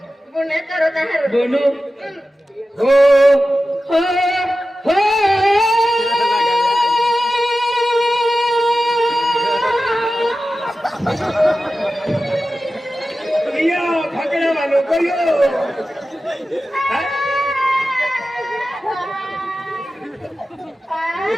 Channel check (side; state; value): both; normal; correlation 0.94